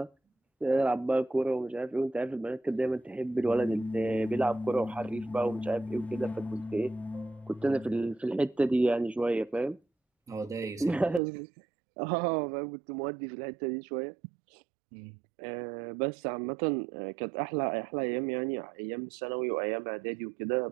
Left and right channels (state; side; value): drops out; left; at 11.2 s